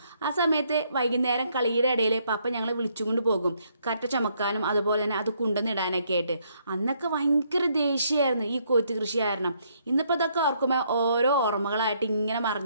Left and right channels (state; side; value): inverted; both; correlation -0.71